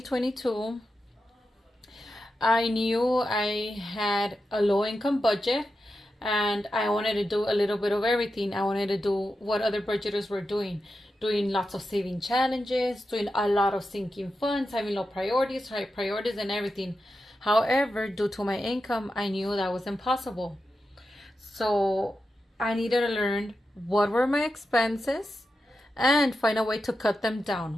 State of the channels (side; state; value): both; normal; correlation 0.89